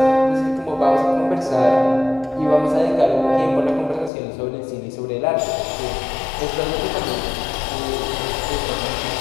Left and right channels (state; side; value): drops out; right; at 4.1 s